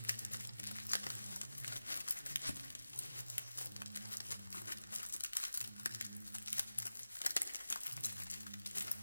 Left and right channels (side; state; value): both; inverted; correlation -0.96